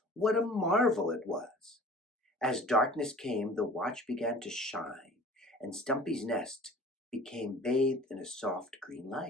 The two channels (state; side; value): normal; both; correlation 0.44